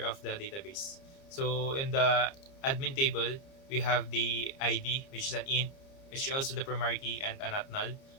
of the database. So in the admin table, we have the ID, which is an int, which is also the primary key and a not null,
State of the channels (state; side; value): late; right; 30 ms